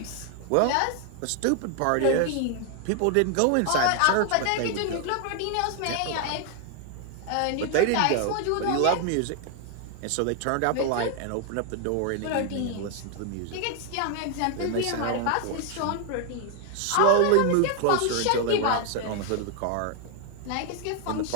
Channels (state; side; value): different; both; correlation 0.00